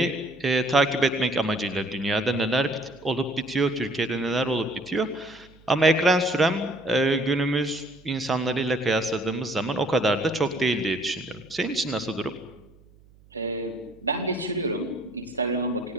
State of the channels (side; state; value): right; noise; hum, 27 dB below the sound